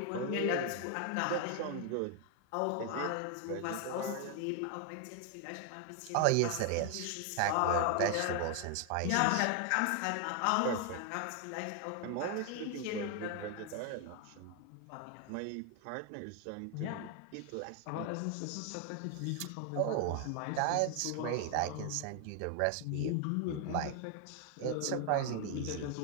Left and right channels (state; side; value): different; both; correlation 0.00